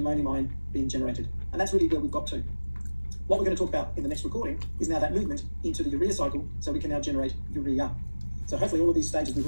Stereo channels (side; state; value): both; inverted; correlation -1.00